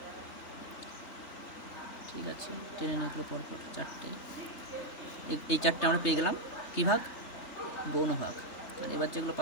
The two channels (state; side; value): late; right; 3.3 ms